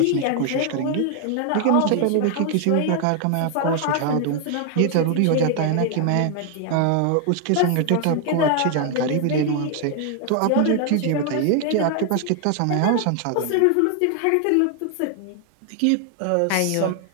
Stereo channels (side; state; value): both; different; correlation 0.00